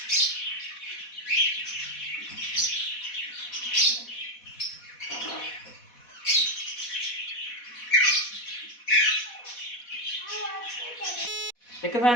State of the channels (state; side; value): late; right; 4.1 ms